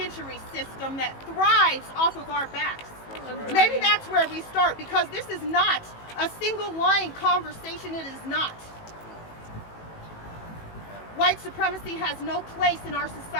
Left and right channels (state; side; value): late; right; 18 ms